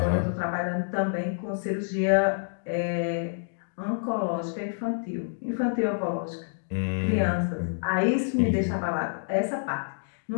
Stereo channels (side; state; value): right; silent; digital silence